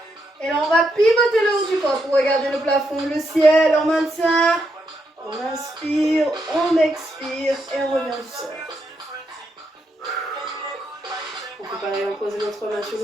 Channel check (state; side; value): normal; both; correlation 0.80